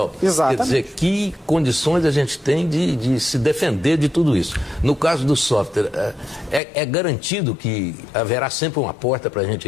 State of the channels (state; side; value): drops out; right; at 6.6 s